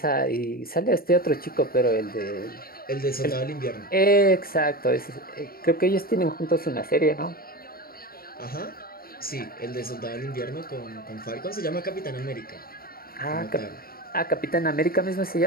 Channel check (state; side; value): late; right; 0.43 ms